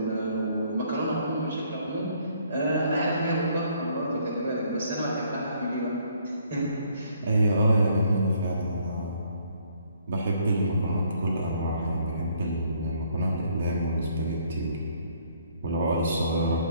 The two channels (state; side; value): inverted; both; correlation -0.65